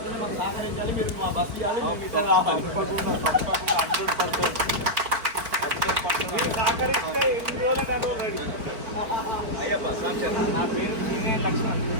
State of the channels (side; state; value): left; late; 4.5 ms